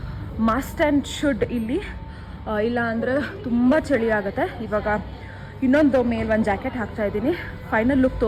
ಮಸ್ಟ್ ಆ್ಯಂಡ್ ಶುಡ್ ಇಲ್ಲಿ. ಇಲ್ಲ ಅಂದರೆ ತುಂಬ ಚಳಿ ಆಗುತ್ತೆ. ಇವಾಗ ಇನ್ನೊಂದು ಮೇಲೆ ಒಂದು ಜಾಕೆಟ್ ಹಾಕ್ತಾಯಿದ್ದೀನಿ. ಫೈನಲ್ ಲುಕ್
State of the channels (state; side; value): identical; both; correlation 1.00